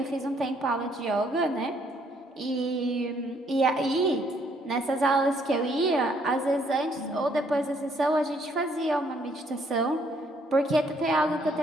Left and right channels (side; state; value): both; normal; correlation 0.67